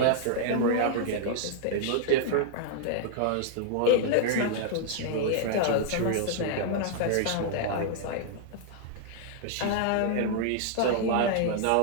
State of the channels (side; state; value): both; different; correlation -0.01